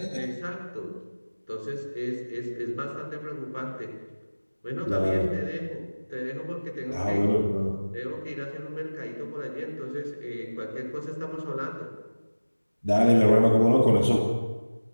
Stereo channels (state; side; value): inverted; both; correlation -1.00